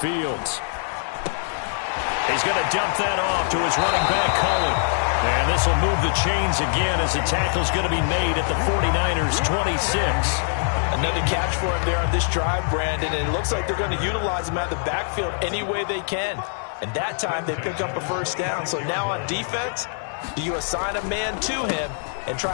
He's going to dump that off to his running back, Cohen. And this will move the chains again as the tackle's going to be made at the 49ers' 26. Another catch for him there on this drive, Brandon, and it looks like they're going to utilize him out of the backfield any way they can. And that time they pick up a first down. So now on defense, do you assign a man to him and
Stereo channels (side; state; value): right; silent; digital silence